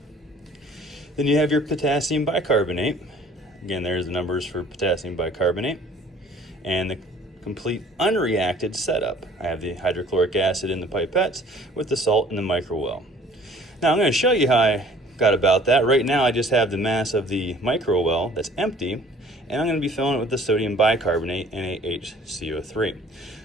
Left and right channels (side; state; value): both; normal; correlation 0.53